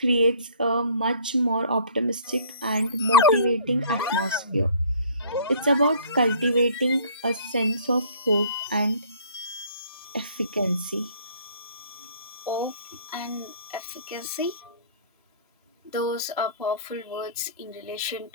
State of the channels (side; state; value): both; inverted; correlation -0.54